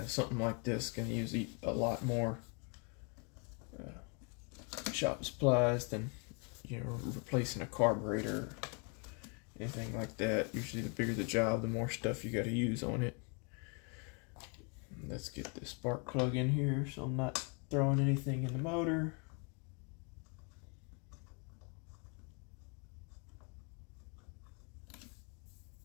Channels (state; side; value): quieter; right; 36.2 dB